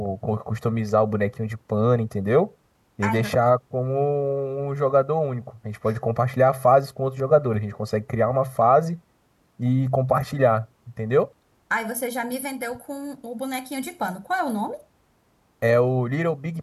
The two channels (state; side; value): identical; both; correlation 1.00